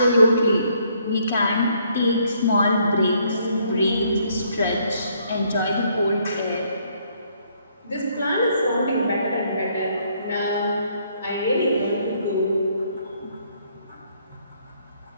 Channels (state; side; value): inverted; both; correlation -0.68